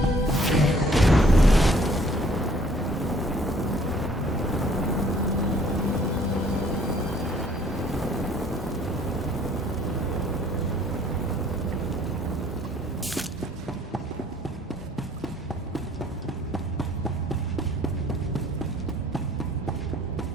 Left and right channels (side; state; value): both; normal; correlation 0.58